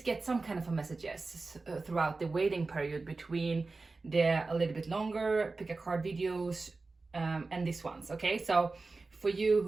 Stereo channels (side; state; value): left; quieter; 3.7 dB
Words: get some kind of a messages throughout the waiting period between the a little bit longer pick a card videos and these ones. Okay, so for you